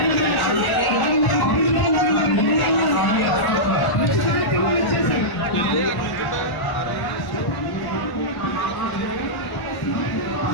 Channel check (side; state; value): right; late; 1.1 ms